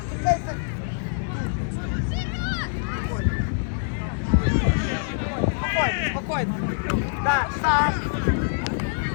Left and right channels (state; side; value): silent; right; 62 dB below the other